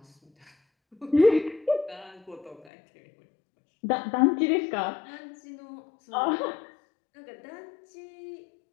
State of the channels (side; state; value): right; drops out; at 2.7 s